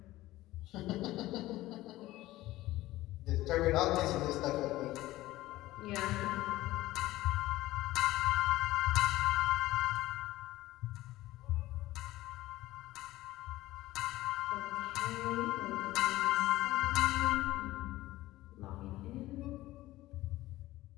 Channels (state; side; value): quieter; right; 16.9 dB